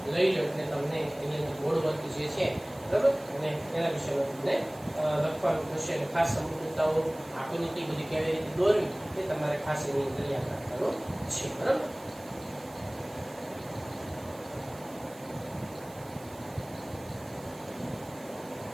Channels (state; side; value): noise; right; hiss, 21 dB below the sound